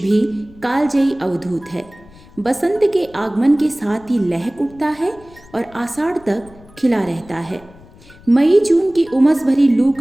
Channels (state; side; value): noise; left; rumble, 24 dB below the sound